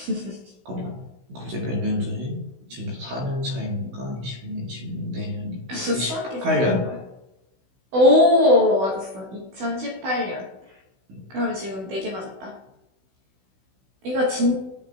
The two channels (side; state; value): left; late; 16 ms